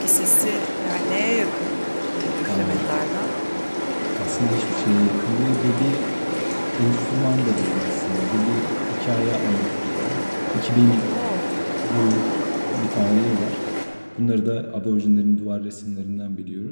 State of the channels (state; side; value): inverted; both; correlation -1.00